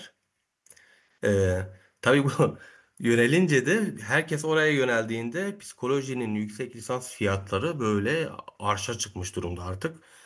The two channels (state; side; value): identical; both; correlation 1.00